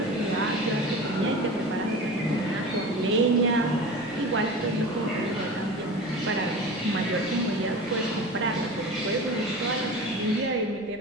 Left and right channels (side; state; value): right; noise; rumble, 26 dB below the sound